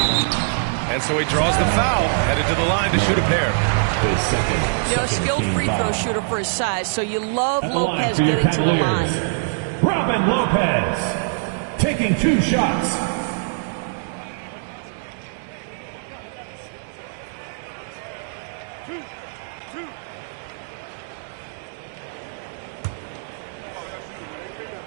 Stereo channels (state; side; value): silent; left; digital silence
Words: And so he draws the foul, headed to the line to shoot a pair. You know, skilled free throw shooter for his size, so you love Lopez getting to the line. Robin Lopez taking 2 shots.